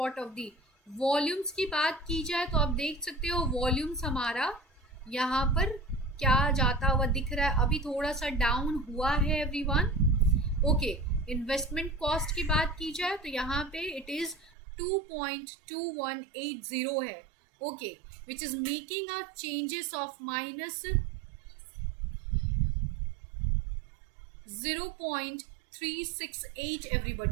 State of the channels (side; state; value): left; drops out; at 14.5 s